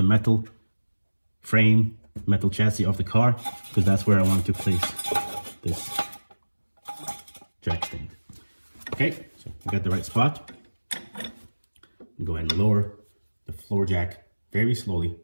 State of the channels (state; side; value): inverted; both; correlation -1.00